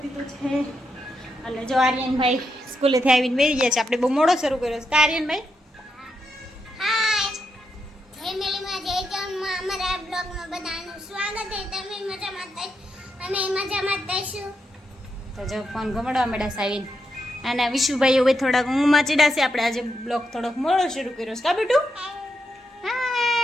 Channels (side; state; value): both; normal; correlation 0.83